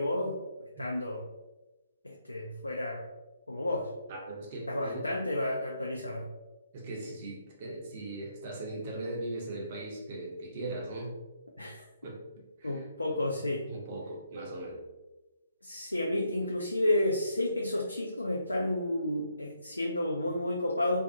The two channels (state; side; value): inverted; both; correlation -0.76